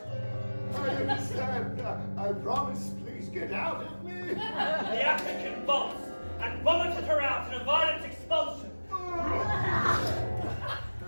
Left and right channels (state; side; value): inverted; both; correlation -1.00